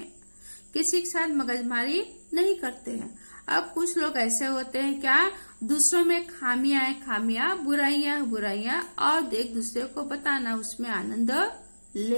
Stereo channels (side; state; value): both; inverted; correlation -1.00